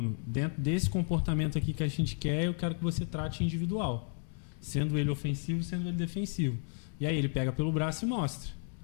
dentro desse comportamento aqui que a gente quer, eu quero que você trate individual, sendo ele ofensivo, sendo ele defensivo. E aí ele pega pelo braço e mostra,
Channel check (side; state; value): right; silent; 56 dB below the other